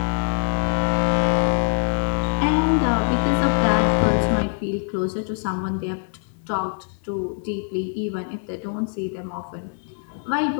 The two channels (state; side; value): silent; right; digital silence